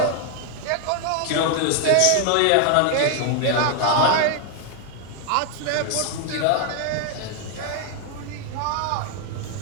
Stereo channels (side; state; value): both; different; correlation 0.00